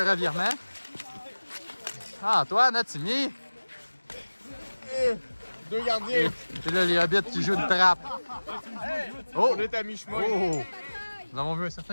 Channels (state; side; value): inverted; both; correlation -1.00